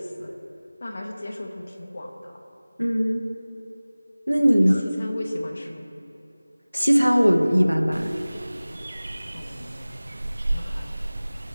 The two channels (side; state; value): both; inverted; correlation -0.99